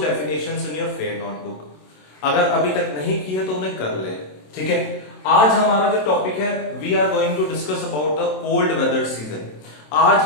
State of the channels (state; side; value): late; right; 27 ms